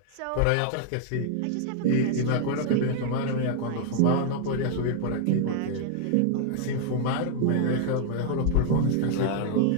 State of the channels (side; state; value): both; different; correlation 0.00